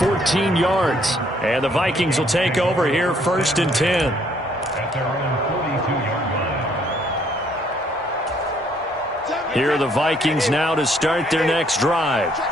yards. And the Vikings will take over here, 1st and 10. Here are the Vikings now to start their next drive.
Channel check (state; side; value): normal; both; correlation 0.66